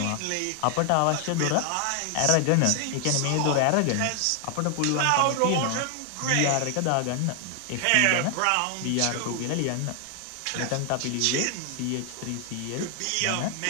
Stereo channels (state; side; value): different; both; correlation 0.00